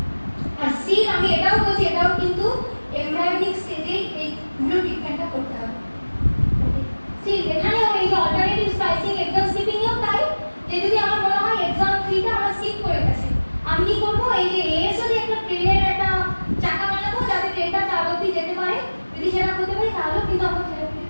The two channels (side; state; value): both; inverted; correlation -1.00